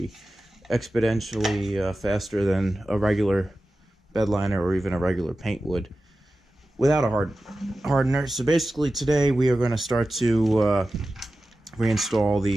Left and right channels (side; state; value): both; normal; correlation 0.94